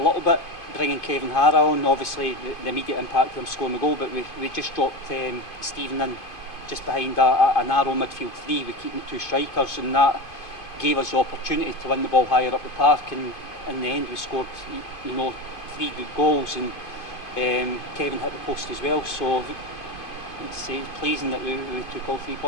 bit, bringing Kevin Hara on. Obviously the immediate impact of him scoring the goal, but we just dropped Stephen in just behind a narrow midfield three. We keep the 2 strikers, and that gave us the opportunity to win the ball higher up the park, and in the end we scored 3 good goals, and Kevin hit the post as well, so it's pleasing that we took all 3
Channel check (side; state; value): right; late; 2.5 ms